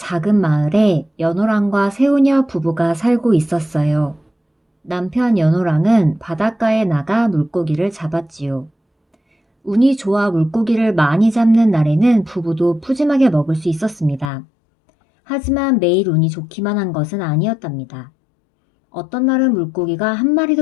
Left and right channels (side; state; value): right; drops out; at 14.3 s